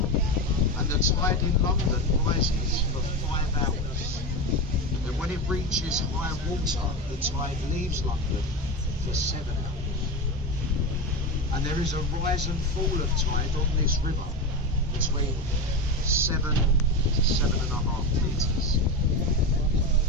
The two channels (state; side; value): normal; both; correlation 0.21